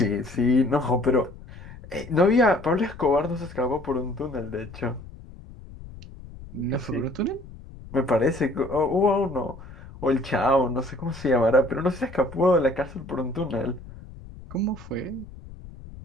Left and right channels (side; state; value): left; noise; rumble, 16 dB below the sound